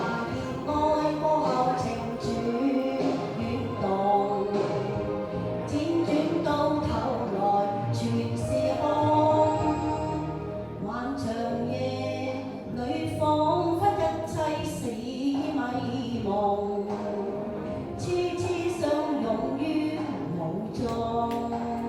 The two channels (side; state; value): both; identical; correlation 1.00